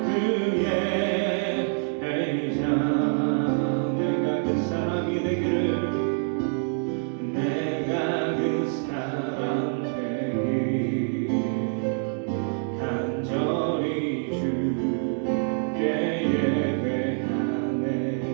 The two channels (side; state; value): left; silent; 61 dB below the other